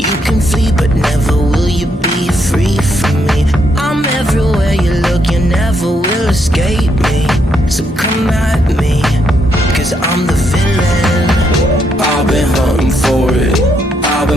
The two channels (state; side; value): normal; both; correlation 0.76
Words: can flee, but never will you be free from me. I'm everywhere you look, you never will escape me. So come at me, cause I'm the villain. I've been hunting for it, I've